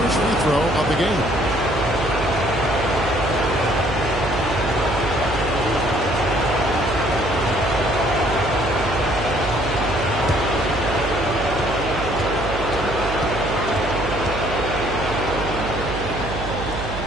free throw of the game.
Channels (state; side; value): noise; right; hum, 7 dB below the sound